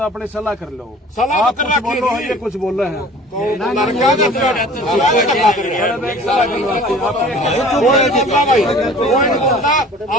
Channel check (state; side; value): normal; both; correlation 0.46